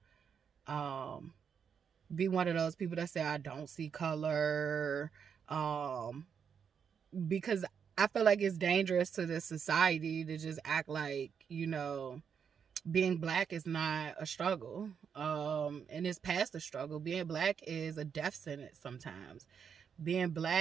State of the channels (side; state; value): left; quieter; 7.1 dB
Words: be one of those people that say I don't see color, because I feel like it's dangerous to this society to just act like, being black is not a struggle, and it's past a struggle. Being black is a death sentence sometimes. Being